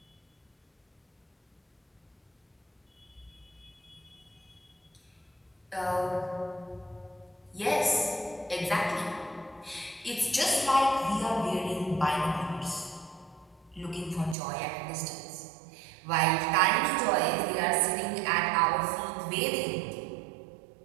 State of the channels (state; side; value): drops out; left; at 14.4 s